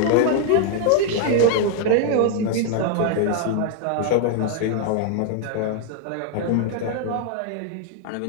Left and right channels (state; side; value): different; both; correlation 0.00